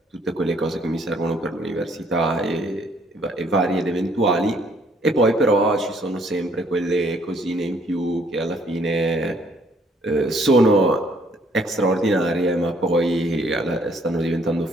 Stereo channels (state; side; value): normal; both; correlation 0.65